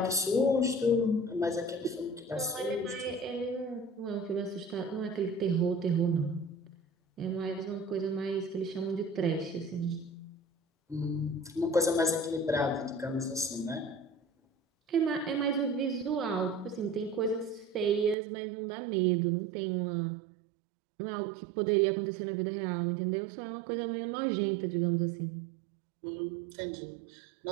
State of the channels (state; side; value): drops out; left; at 18.2 s